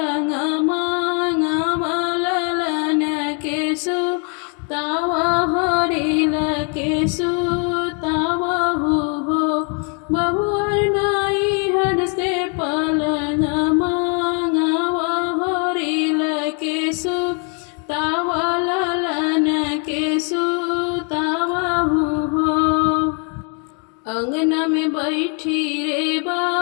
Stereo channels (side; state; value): right; quieter; 38.4 dB